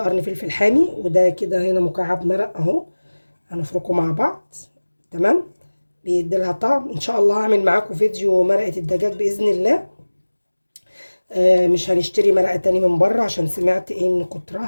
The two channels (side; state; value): both; inverted; correlation -1.00